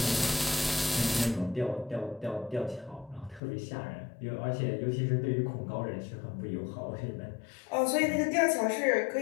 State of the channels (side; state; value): right; drops out; at 3.4 s